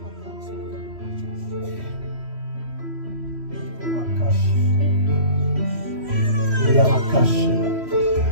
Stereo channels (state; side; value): late; left; 3.1 ms